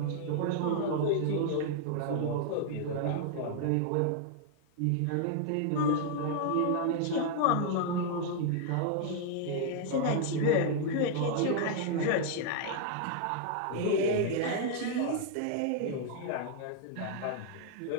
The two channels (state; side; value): different; both; correlation -0.01